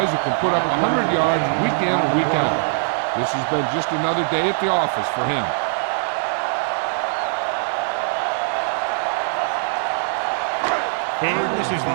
who can put up 100 yards week in and week out. This has been just another day at the office for him. And this is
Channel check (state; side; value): silent; left; digital silence